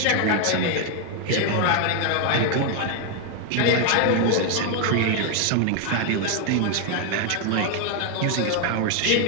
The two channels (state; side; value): different; both; correlation 0.01